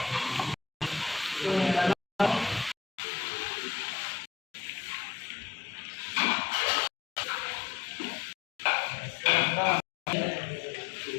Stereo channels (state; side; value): drops out; right; at 2.8 s